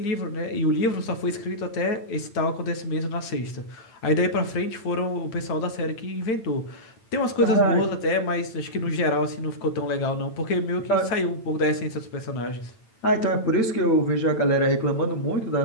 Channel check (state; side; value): late; right; 8.9 ms